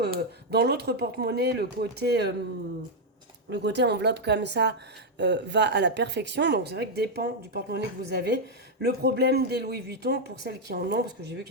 dans l'autre porte-monnaie, le côté enveloppe comme ça va à la perfection. Donc c'est vrai que dépend du porte-monnaie que vous avez. Le problème des Louis Vuitton, pour celles qui en ont, parce que j'ai vu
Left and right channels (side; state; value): both; normal; correlation 0.00